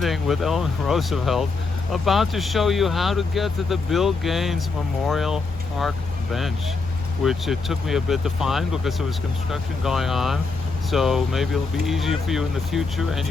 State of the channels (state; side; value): quieter; right; 4.1 dB